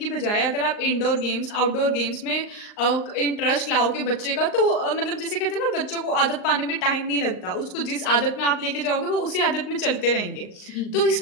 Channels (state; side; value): late; right; 38 ms